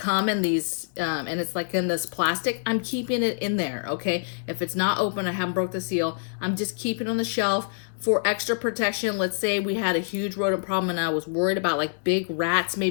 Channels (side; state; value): right; silent; 61 dB below the other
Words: in these, and it's like in this plastic, I'm keeping it in there, okay? If it's not open, I haven't broke the seal, I'm just keeping it on the shelf for extra protection. Let's say we had a huge rodent problem and I was worried about like big rats